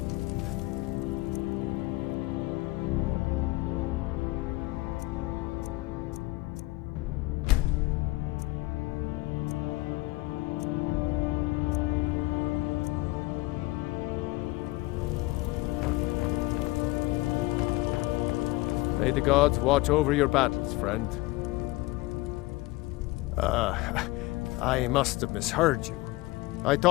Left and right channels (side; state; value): right; quieter; 21.1 dB